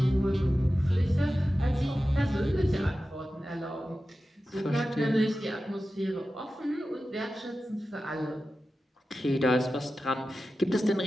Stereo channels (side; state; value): both; normal; correlation 0.94